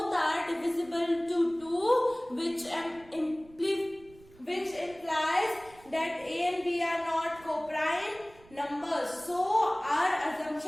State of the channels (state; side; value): noise; right; rumble, 25 dB below the sound